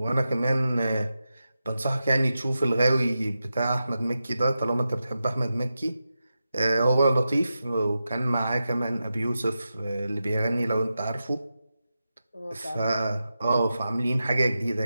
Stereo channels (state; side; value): inverted; both; correlation -0.90